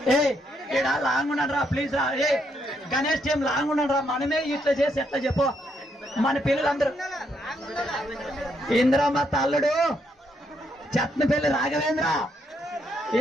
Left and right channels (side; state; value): both; normal; correlation 0.76